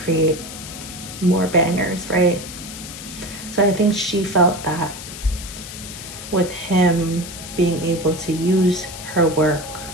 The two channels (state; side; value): noise; left; hiss, 11 dB below the sound